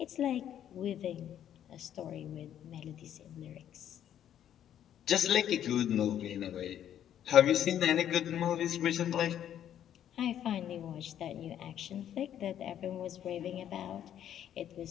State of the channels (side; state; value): right; quieter; 10.4 dB